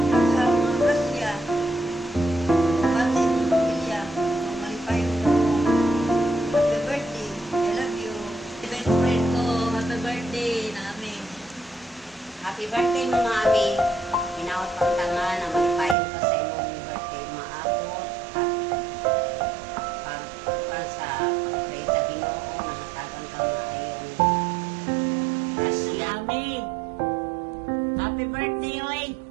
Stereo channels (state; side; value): drops out; left; at 16.0 s